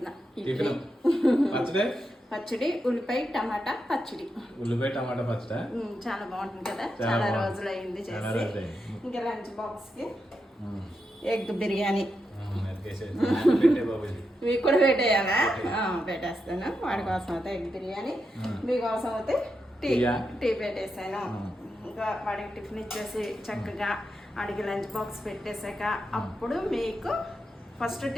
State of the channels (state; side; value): normal; both; correlation 0.86